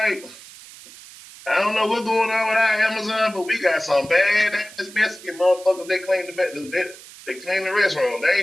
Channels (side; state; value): right; noise; hiss, 18 dB below the sound